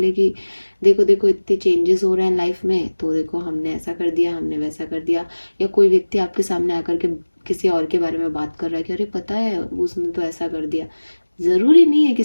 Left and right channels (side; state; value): both; inverted; correlation -1.00